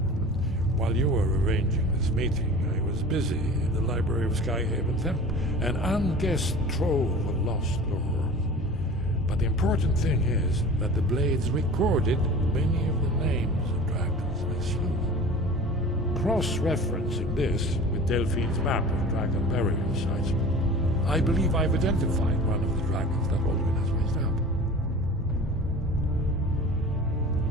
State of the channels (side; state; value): both; normal; correlation 0.39